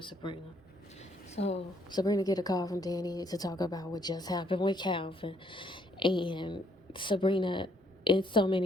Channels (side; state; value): both; normal; correlation 0.67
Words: Sabrina. So Sabrina get a call from Danny to talk about what just happened with Calvin. And Sabrina, in so